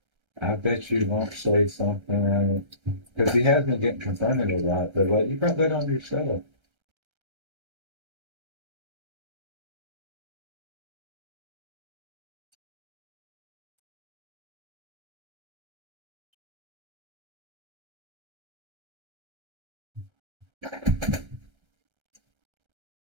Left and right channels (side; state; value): left; late; 1.3 ms